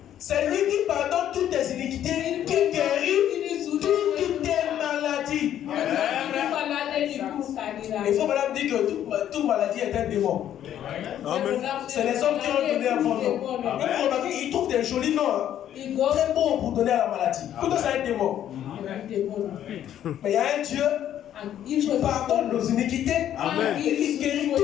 C'est lui qui pardonne toutes tes iniquités, qui guérit toutes tes maladies. Il faut madame dire que toute maladie est un démon. C'est les hommes qui ont donné un bon nom. Ils trouvent des jolis noms. Très bons pour donner à la maladie. Tout ça, c'est un démon. Mais il y a un Dieu qui pardonne nos iniquités. Il guérit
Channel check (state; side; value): quieter; right; 10.9 dB